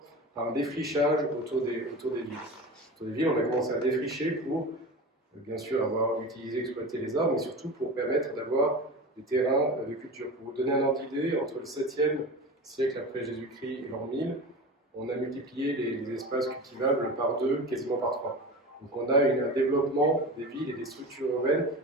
par un défrichage autour des villes. Autour des villes, on a commencé à défricher pour, bien sûr, avoir utilisé, exploité les arbres, mais surtout pour permettre d'avoir des terrains de culture. Pour vous donner un ordre d'idée, entre le 7e siècle après Jésus-Christ et l'an 1000, on a multiplié les espaces cultivables par 2, quasiment par 3. Donc on a un développement des villes et des structures urbaines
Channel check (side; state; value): both; normal; correlation 0.30